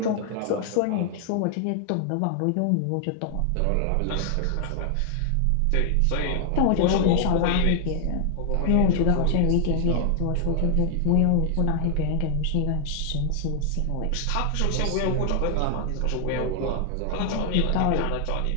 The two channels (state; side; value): different; both; correlation 0.00